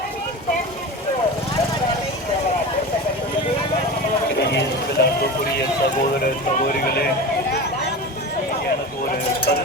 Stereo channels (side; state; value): both; normal; correlation 0.29